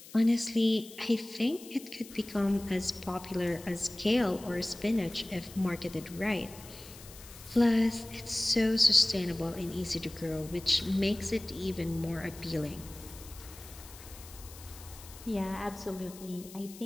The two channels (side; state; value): left; noise; hiss, 18 dB below the sound